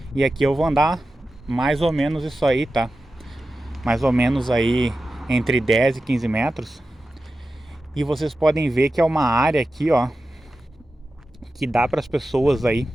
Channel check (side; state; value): both; normal; correlation 0.93